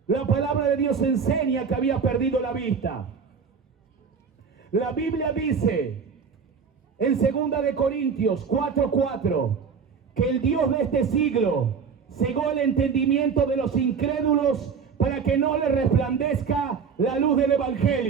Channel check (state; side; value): quieter; left; 6.0 dB